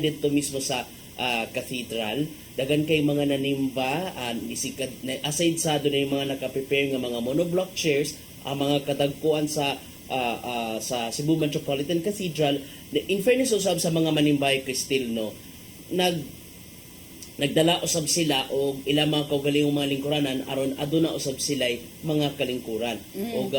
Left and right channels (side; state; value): both; identical; correlation 1.00